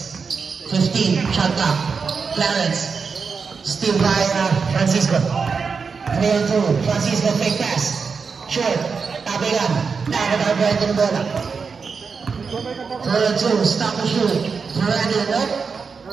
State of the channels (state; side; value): quieter; left; 5.3 dB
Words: 15, shot clock. Clarence. Still by Francisco. 3-2. Francisco fake pass. Short. Tabigan. Dapat ang Brandon bola. 3-2. Stop the shoot. Brandon, no?